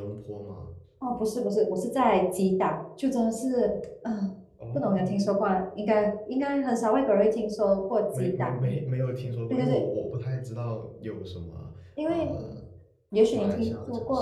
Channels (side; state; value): both; identical; correlation 1.00